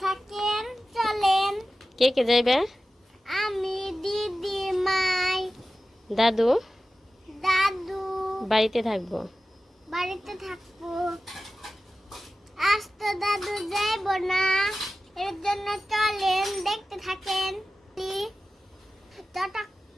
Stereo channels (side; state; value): both; normal; correlation 0.95